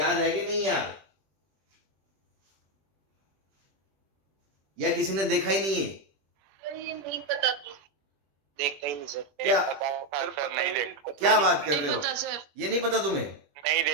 है कि नहीं यार? या किसी ने देखा ही नहीं है? ये नहीं पता, देखता ही नहीं सर। क्या सर नहीं देखता। क्या बात कर रहे नहीं हो? पता सर। ये नहीं पता तुम्हें? नहीं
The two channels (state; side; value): late; left; 21 ms